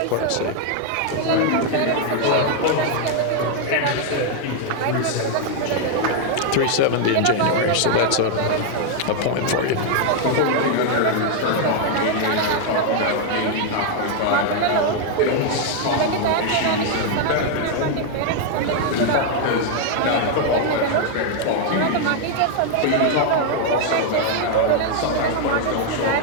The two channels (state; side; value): different; both; correlation 0.00